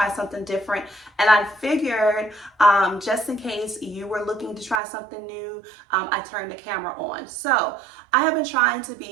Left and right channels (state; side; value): drops out; left; at 4.8 s